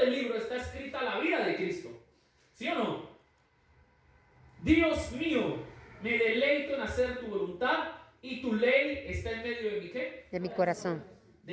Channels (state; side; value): identical; both; correlation 1.00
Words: libro está escrita la vida de Cristo. ¿Sí o no? Dios mío, me deleito en hacer tu voluntad y tu ley está en medio de mi ¿qué? De mi corazón.